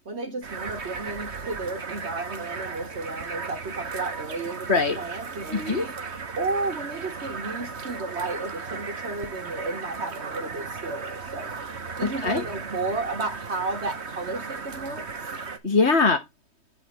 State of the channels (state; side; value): late; left; 3.2 ms